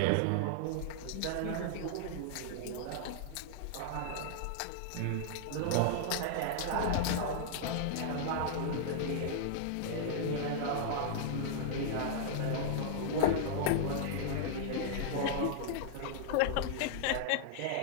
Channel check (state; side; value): different; both; correlation -0.01